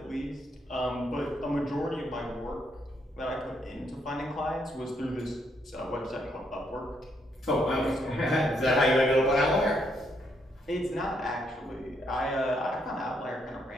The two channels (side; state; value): both; normal; correlation 0.75